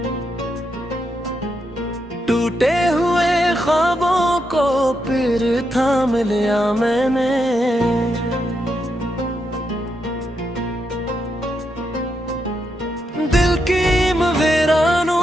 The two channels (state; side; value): normal; both; correlation 0.82